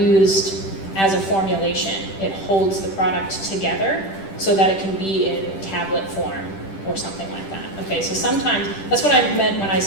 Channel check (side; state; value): right; late; 10 ms